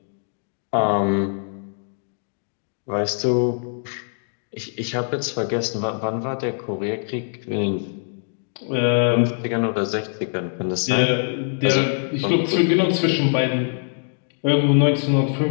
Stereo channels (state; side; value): silent; right; digital silence